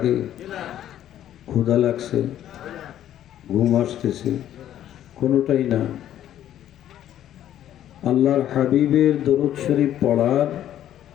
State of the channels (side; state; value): right; quieter; 11.5 dB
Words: ক্ষুধা লাগছে? ঘুম আসতেছে? কোনোটাই না। আল্লাহর হাবিবের দরুদ শরীফ পড়ার